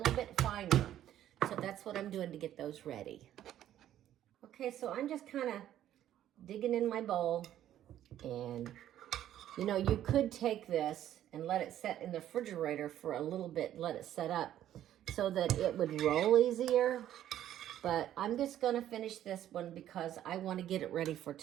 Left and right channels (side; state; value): left; quieter; 11.8 dB